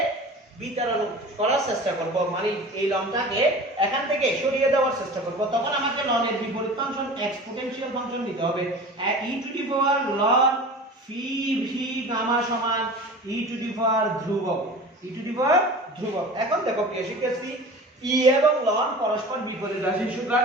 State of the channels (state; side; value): normal; both; correlation 0.37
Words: বিতরণ করার চেষ্টা করব, মানে এই লনটাকে এখান থেকে সরিয়ে দেওয়ার চেষ্টা করব, তখন আমাকে ln এর বিপরীত ফাংশন এক্সপোনেনশিয়াল ফাংশন নিতে হবে, e to the power ln phi v gamma সমান e টু দি পাওয়ার ধ্রুবক, e টু দি পাওয়ার ধ্রুবক। এখন দেখো প্রিয় শিক্ষার্থী, e এবং ln পরস্পর বিপরীত রাশি, সুতরাং